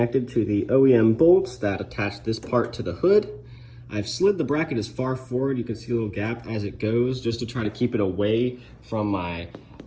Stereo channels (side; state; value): both; identical; correlation 1.00